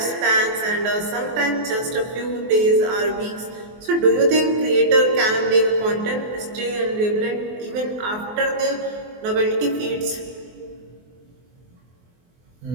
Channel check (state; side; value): late; left; 24 ms